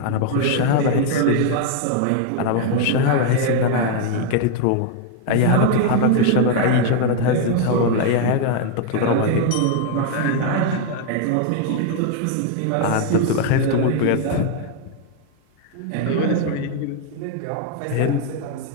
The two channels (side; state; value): both; different; correlation 0.00